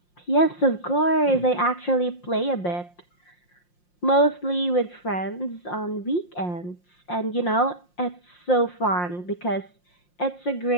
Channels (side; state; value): right; late; 5.7 ms